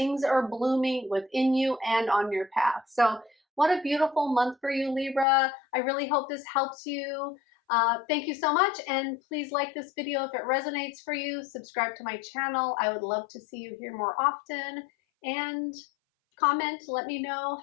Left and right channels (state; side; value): drops out; right; at 5.2 s